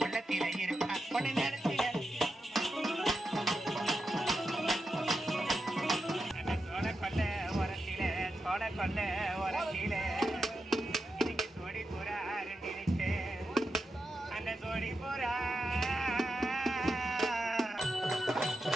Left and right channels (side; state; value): both; normal; correlation 0.88